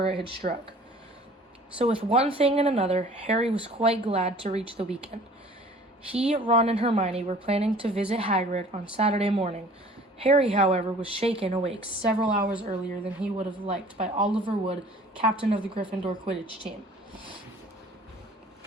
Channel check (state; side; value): normal; both; correlation 0.50